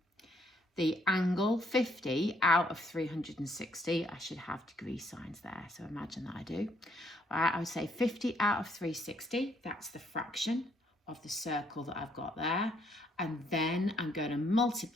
the angle 50 out of 360. I should have degree signs there, so imagine that I do. All right, I would say 50 out of 360, that's the fraction of the circle that I've got there. And then I'm going to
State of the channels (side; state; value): both; normal; correlation 0.70